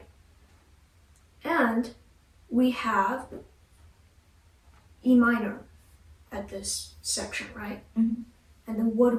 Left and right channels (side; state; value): both; identical; correlation 1.00